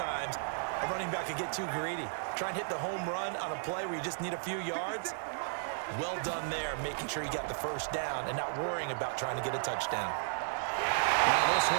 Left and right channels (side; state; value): left; silent; digital silence